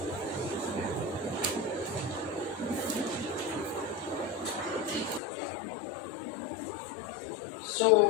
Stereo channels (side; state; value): right; drops out; at 5.2 s